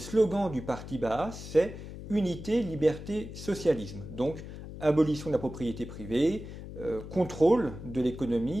du parti Baas, c'est unité, liberté, socialisme. Donc, abolition de la propriété privée, contrôle de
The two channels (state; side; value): noise; left; hum, 11 dB below the sound